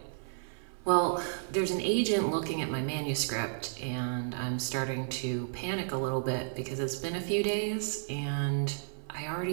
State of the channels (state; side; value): silent; left; 56 dB below the other